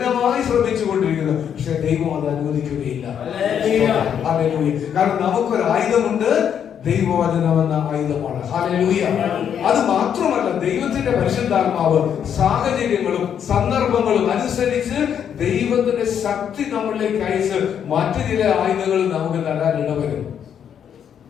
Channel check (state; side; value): quieter; right; 8.6 dB